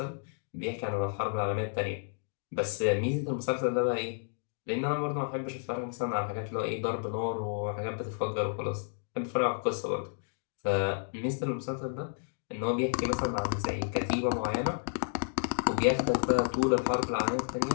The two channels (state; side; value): silent; right; digital silence